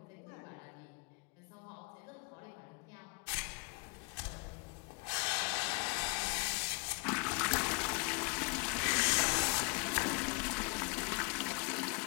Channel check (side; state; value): right; quieter; 32.8 dB